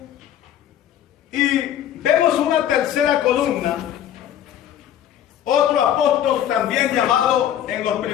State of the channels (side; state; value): right; quieter; 10.7 dB